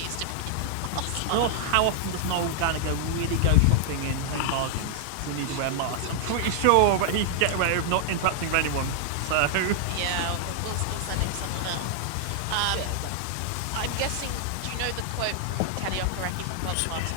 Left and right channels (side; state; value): both; different; correlation -0.01